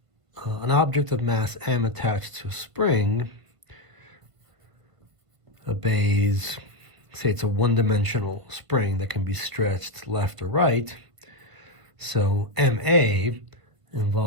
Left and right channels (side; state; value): left; late; 1.5 ms